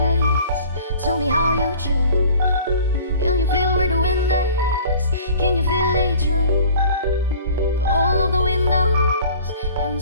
Tell me how you choose. Can you feel where the wind is? Can you feel it through all of the windows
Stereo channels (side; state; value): both; inverted; correlation -0.47